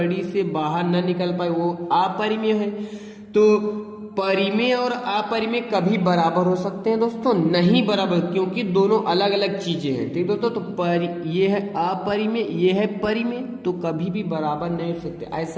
से बाहर न निकल पाए वो अपरिमेय है। तो परिमेय और अपरिमेय कभी बराबर हो सकते हैं दोस्तों, नहीं बराबर, क्योंकि दोनों अलग अलग चीजें हैं। ठीक दोस्तों, तो ये है अपरिमेय, ये है परिमेय, तो कभी भी बराबर नहीं हो सकते।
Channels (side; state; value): both; identical; correlation 1.00